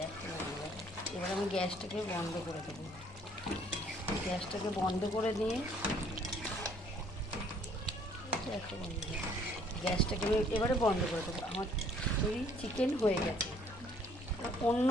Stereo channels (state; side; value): normal; both; correlation 0.61